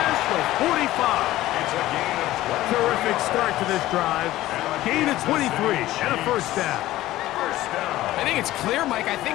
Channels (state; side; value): quieter; right; 15.7 dB